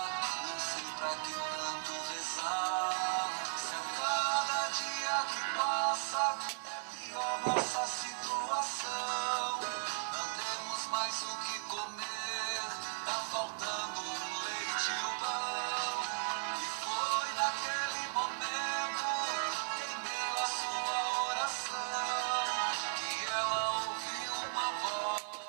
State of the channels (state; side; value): silent; left; digital silence